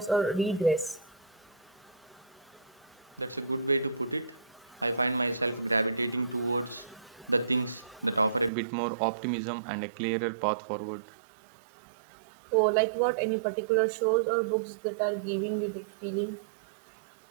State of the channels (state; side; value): drops out; left; at 8.5 s